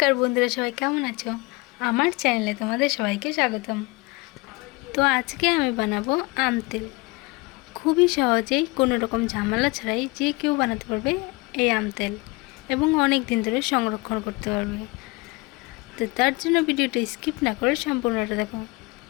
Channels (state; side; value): quieter; right; 25.2 dB